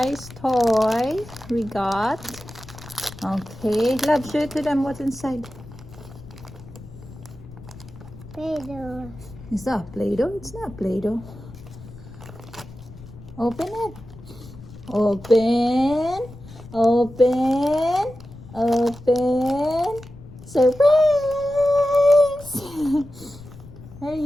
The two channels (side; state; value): left; noise; rumble, 17 dB below the sound